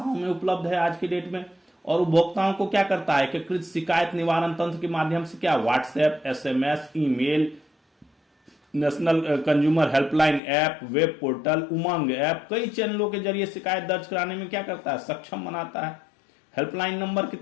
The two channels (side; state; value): right; drops out; at 10.4 s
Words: में उपलब्ध है आज के डेट में, और उपभोक्ताओं को क्या करता है? एकीकृत शिकायत निवारण तंत्र के माध्यम से क्या, WhatsApp, SMS, email, national consumer helpline app, web portal, UMANG app, कई चैनलों के जरिए शिकायत दर्ज कराने में क्या करता है? सक्षम बनाता है। हेल्पलाइन नंबर